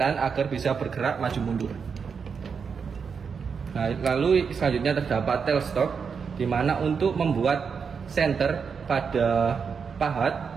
agar bisa bergerak maju mundur. Nah, lalu selanjutnya terdapat tailstock, di mana untuk membuat center pada pahat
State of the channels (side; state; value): left; quieter; 6.0 dB